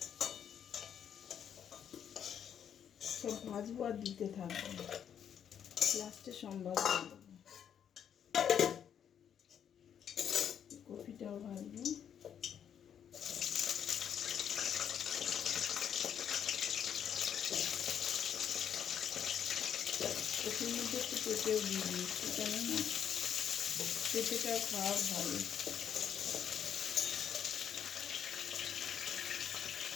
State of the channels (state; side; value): quieter; right; 8.7 dB